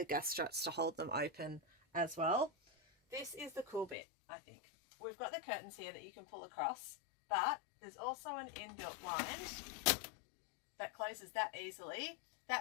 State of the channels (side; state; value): right; drops out; at 4.0 s